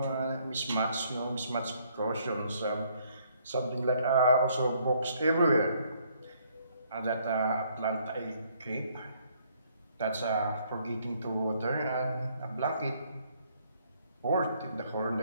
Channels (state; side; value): inverted; both; correlation -0.67